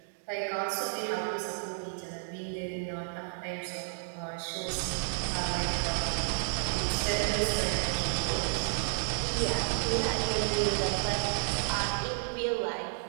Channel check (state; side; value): silent; left; digital silence